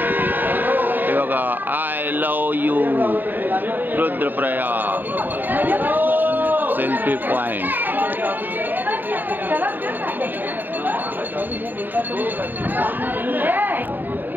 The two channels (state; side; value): late; left; 0.090 ms